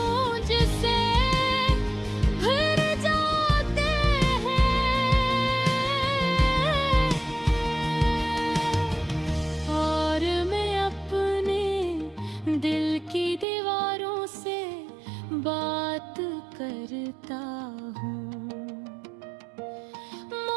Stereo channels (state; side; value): drops out; left; at 13.5 s